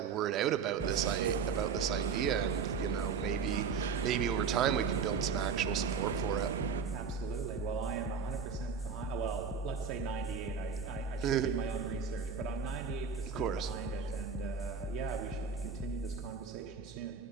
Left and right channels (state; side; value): quieter; left; 5.8 dB